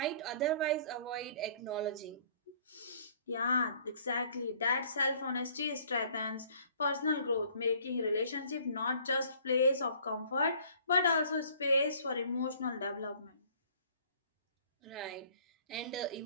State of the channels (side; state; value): both; inverted; correlation -0.55